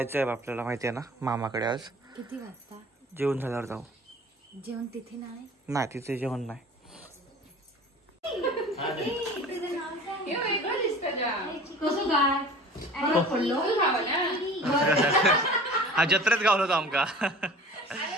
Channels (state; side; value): normal; both; correlation 0.43